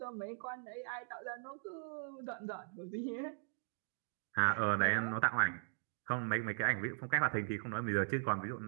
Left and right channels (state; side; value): silent; left; digital silence